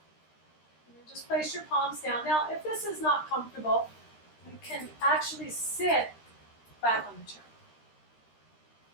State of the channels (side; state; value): right; late; 13 ms